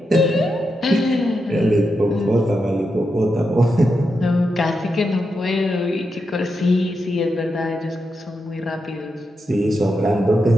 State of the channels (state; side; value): normal; both; correlation 0.86